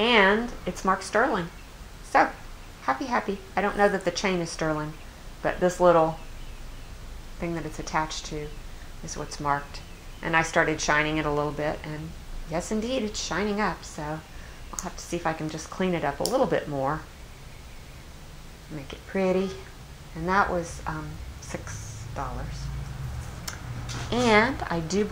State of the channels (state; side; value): identical; both; correlation 1.00